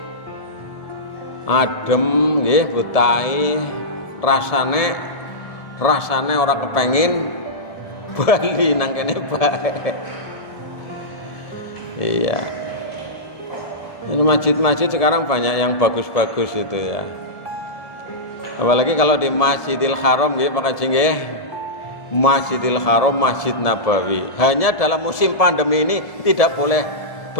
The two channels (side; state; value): right; late; 1.7 ms